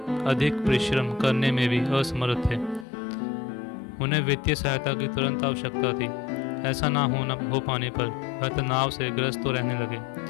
अधिक परिश्रम करने में भी असमर्थ थे। उन्हें वित्तीय सहायता की तुरंत आवश्यकता थी। ऐसा ना हो पाने पर वह तनाव से ग्रस्त तो रहने लगे।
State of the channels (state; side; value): drops out; right; at 2.9 s